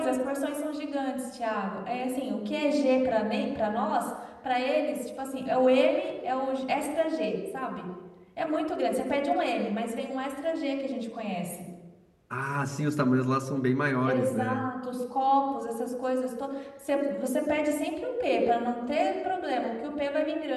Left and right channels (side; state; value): both; identical; correlation 1.00